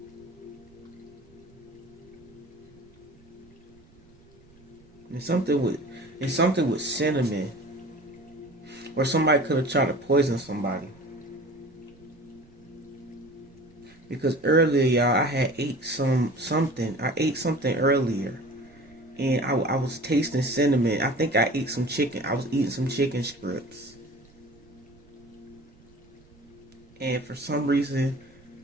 And something with cinnamon, or somebody could have tried to poison somebody. Because earlier, y'all, I had ate something. I ate something earlier, and I was tasting cinnamon. I think I ate some chicken. I was eating some chicken strips, and for some reason,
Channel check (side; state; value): right; noise; rumble, 27 dB below the sound